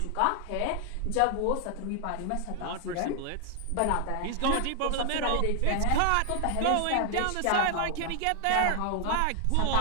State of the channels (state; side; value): different; both; correlation 0.00